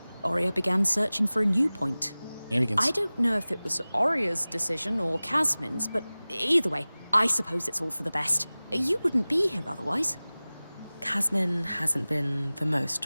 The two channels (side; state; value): both; inverted; correlation -0.99